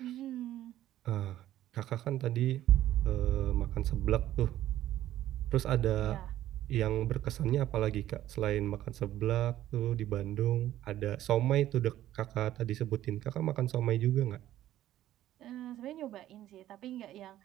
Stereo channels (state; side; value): quieter; left; 13.2 dB